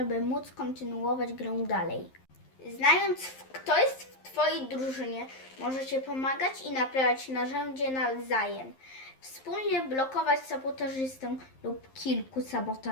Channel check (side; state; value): right; late; 11 ms